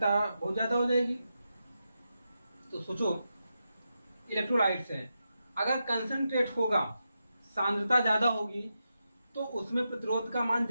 बहुत ज्यादा हो जाएगी। तो सोचो, इलेक्ट्रोलाइट्स है, अगर कंसंट्रेट होगा, सांद्रता ज्यादा होगी, तो उसमें प्रतिरोध का मान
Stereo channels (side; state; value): both; inverted; correlation -0.87